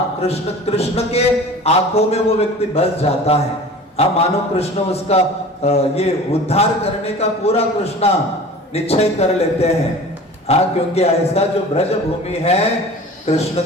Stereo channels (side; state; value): both; normal; correlation 0.40